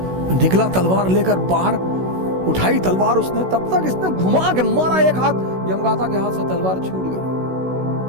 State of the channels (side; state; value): left; late; 16 ms